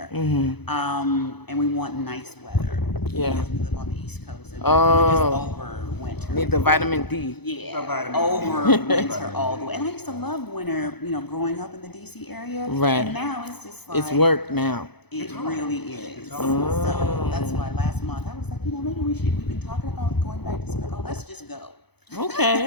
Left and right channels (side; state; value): right; late; 0.98 ms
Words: and we want nice weather. Yeah. Because we live on the East Coast, and Oh. we're just over winter. Need the vitamin D. Yeah, The vitamin. over winter all the way. And I used to love winter, growing up in the DC area. Right. And now it's just like It's work now. it really is. hard. So that's why last month I was like, maybe we've been talking about going back to Senegal. Let's just go. Okay.